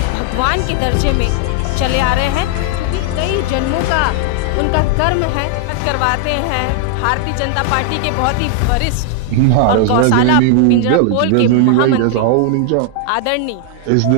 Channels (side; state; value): both; different; correlation 0.00